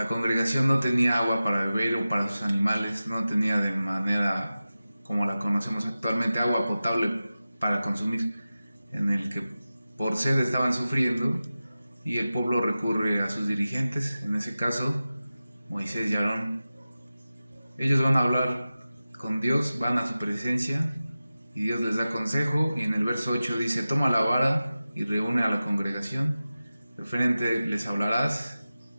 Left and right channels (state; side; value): inverted; both; correlation -0.95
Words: congregación no tenía agua para beber o para sus animales, no tenía de manera como la conocemos actualmente agua potable para consumir, en el que por sed estaban sufriendo, y el pueblo recurre a sus dirigentes, en ese caso Moisés y Aarón. Ellos van a hablar con Dios, van a su presencia y Dios les da consejo, y en el verso 8 dice: Toma la vara y reúne a la congregación, de frente les hablarás